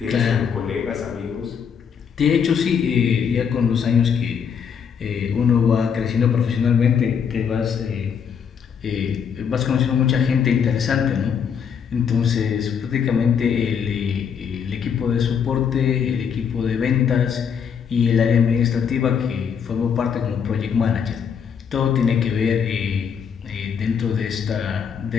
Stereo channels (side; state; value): right; quieter; 7.2 dB